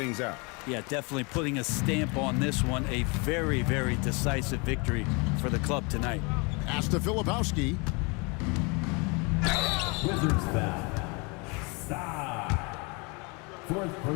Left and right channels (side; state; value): right; quieter; 30.2 dB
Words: out. Yeah, definitely putting a stamp on this one. A very, very decisive victory for the club tonight. Pass to Filipowski. Wizards foul. Star. Fourth